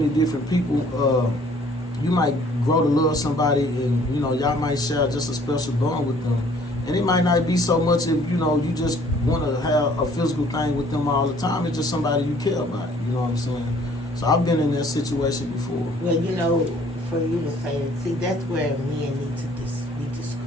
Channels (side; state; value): both; normal; correlation 0.57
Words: different people. You might grow to love somebody, and you know y'all might share just a special bond with them. And it might not be so much if you know you just want to have a physical thing with them all the time. It's just somebody you care about. You know what I'm saying? So I've been in that situation before. Well, you know, for you to say, see, that's where men need to be